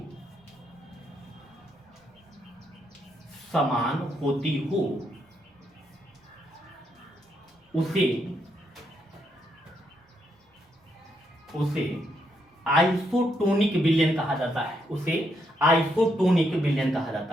हो उसे आइसोटोनिक विलयन कहा जाता है। उसे आइसोटोनिक विलयन कहा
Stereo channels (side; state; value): both; normal; correlation 0.77